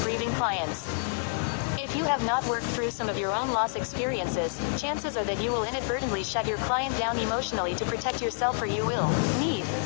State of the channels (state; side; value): silent; right; digital silence